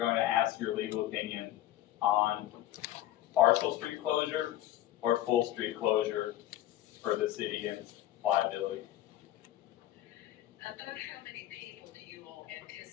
to ask your legal opinion on partial street closure or full street closure for the city and liability. About how many people do you all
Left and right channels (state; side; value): quieter; right; 13.8 dB